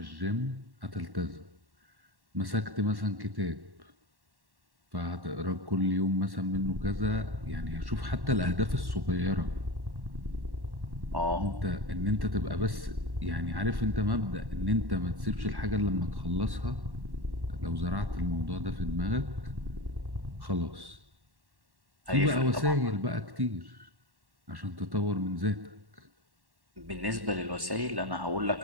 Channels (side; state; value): left; late; 1.1 ms